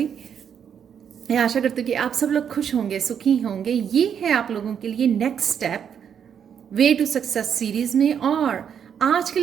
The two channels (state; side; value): quieter; left; 8.0 dB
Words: मैं आशा करती हूँ कि आप सब लोग खुश होंगे, सुखी होंगे। ये है आप लोगों के लिए next step way to success series में। और आज के